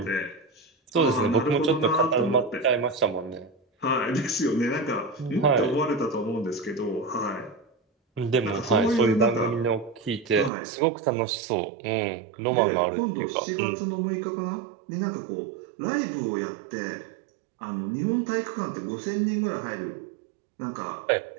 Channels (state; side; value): drops out; left; at 10.5 s